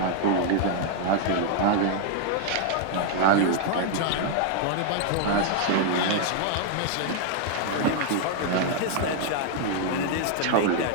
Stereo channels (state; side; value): different; both; correlation 0.00